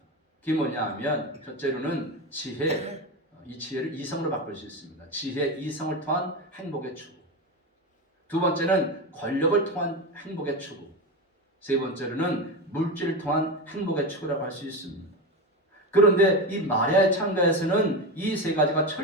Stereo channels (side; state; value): both; normal; correlation 0.19